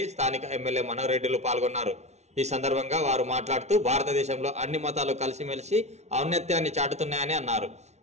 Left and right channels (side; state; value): left; late; 0.32 ms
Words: స్థానిక ఎమ్మెల్యే మనోహర్ రెడ్డిలు పాల్గొన్నారు. ఈ సందర్భంగా వారు మాట్లాడుతూ భారతదేశంలో అన్ని మతాలు కలిసిమెలిసి ఔన్నత్యాన్ని చాటుతున్నాయని అన్నారు.